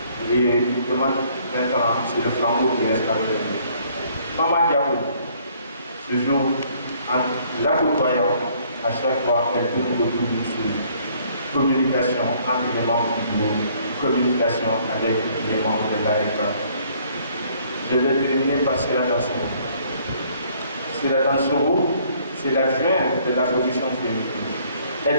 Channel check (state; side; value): inverted; both; correlation -0.62